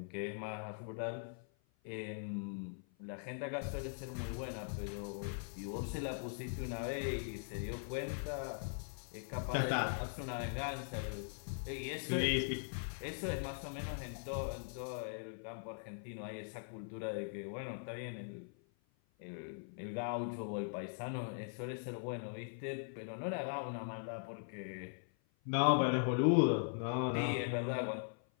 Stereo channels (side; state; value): right; silent; 50 dB below the other